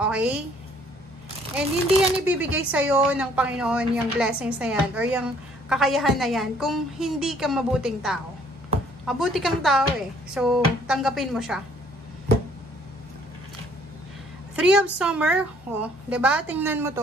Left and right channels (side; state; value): both; normal; correlation 0.61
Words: Okay? And hindi yan ibibigay sa'yo ng Panginoon yung blessings na yan or yung kakayahan na yan kung hindi ka mabuting tao. Mabuti kang tao eh. So, tanggapin mo siya. Three of Summer. Oh, diba? Tingnan mo